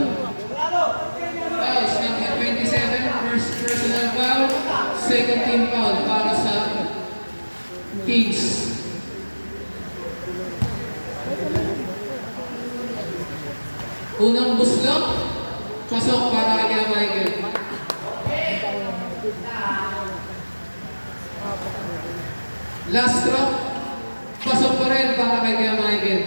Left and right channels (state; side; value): inverted; both; correlation -1.00